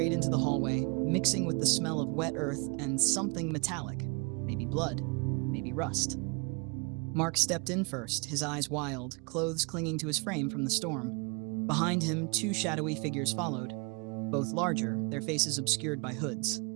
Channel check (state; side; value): quieter; left; 32.2 dB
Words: into the hallway, mixing with the smell of wet earth and something metallic. Maybe blood, maybe rust. Mark stepped in first, his eyes wild, clothes clinging to his frame from the storm. Behind him, 2 shadowy figures followed, both larger, their faces obscured by hoods.